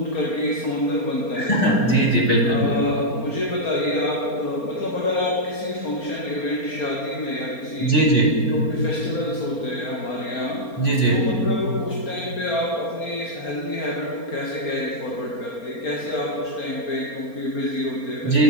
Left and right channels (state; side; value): late; right; 4.3 ms